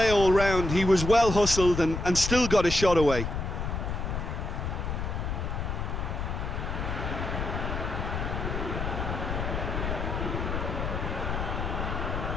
all round. He was well hustled and still got a shot away.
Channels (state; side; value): noise; left; rumble, 3 dB below the sound